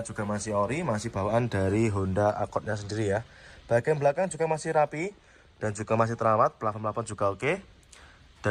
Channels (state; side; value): identical; both; correlation 1.00